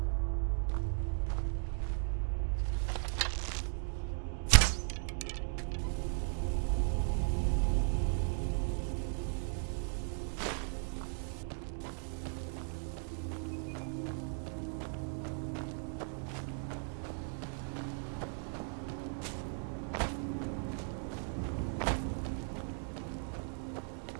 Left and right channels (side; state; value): left; silent; 53 dB below the other